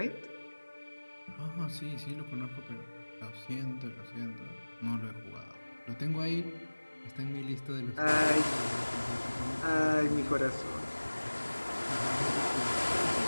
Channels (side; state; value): both; inverted; correlation -1.00